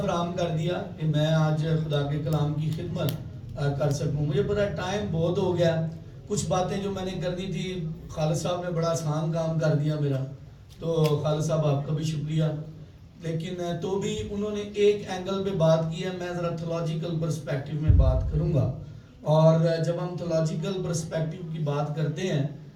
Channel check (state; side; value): identical; both; correlation 1.00